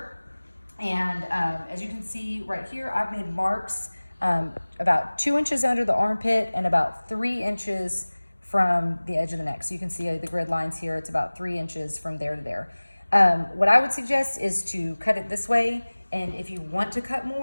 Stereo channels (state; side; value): inverted; both; correlation -1.00